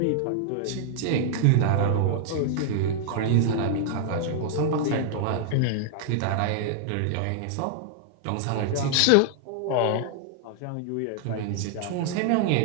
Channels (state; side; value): different; both; correlation 0.00